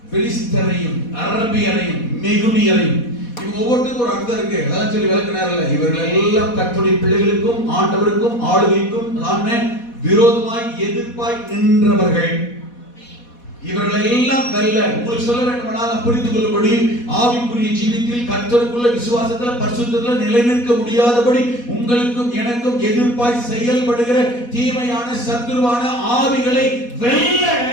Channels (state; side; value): late; right; 4.1 ms